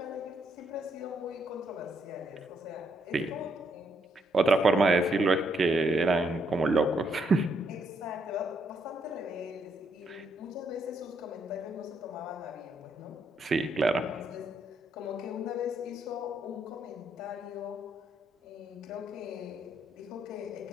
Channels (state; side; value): normal; both; correlation 0.74